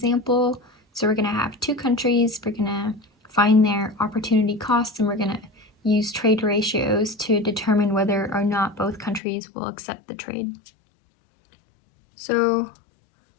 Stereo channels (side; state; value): right; drops out; at 9.2 s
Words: So we're going to have two countries, we're going to find their opportunity costs, and we're going to use trade ratios to determine whether or not both countries will accept the trade. So